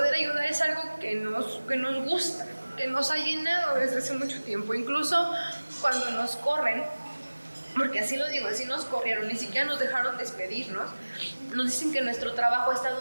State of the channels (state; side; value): inverted; both; correlation -1.00